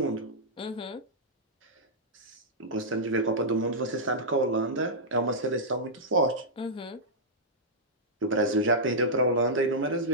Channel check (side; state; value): both; normal; correlation -0.11